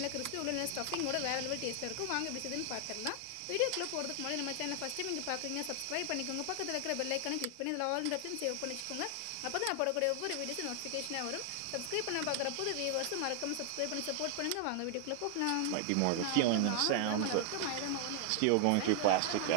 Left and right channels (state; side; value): different; both; correlation 0.00